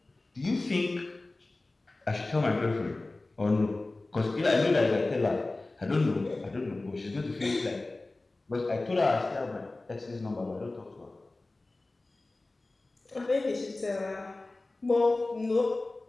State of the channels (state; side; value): quieter; right; 3.1 dB